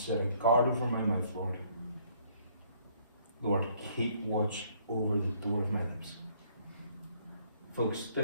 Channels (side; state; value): both; inverted; correlation -0.64